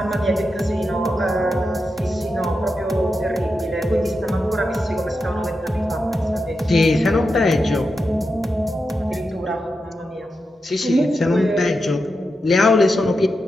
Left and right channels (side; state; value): both; normal; correlation 0.88